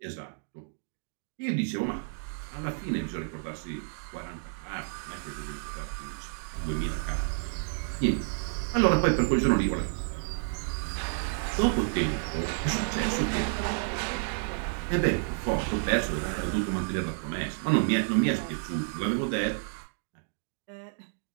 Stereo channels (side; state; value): left; silent; digital silence